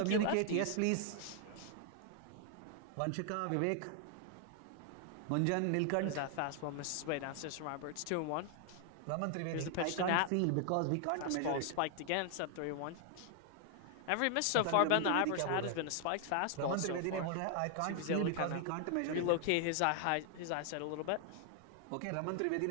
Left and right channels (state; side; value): different; both; correlation 0.00